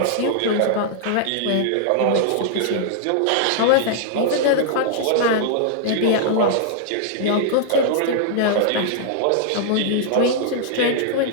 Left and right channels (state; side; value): different; both; correlation -0.01